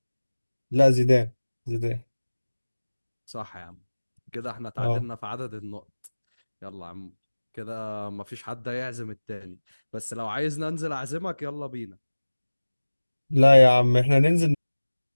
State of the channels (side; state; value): both; inverted; correlation -1.00